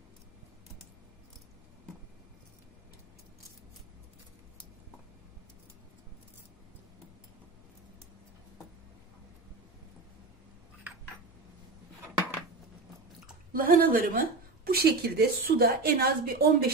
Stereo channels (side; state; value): left; quieter; 3.6 dB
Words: Lahanalarımı bu şekilde suda en az bir